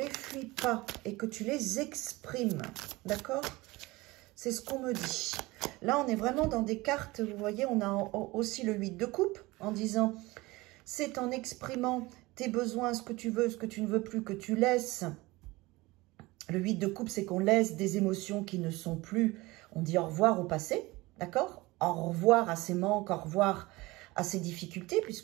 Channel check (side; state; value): left; quieter; 21.4 dB